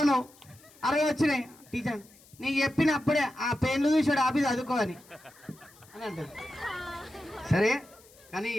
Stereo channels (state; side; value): noise; left; hiss, 26 dB below the sound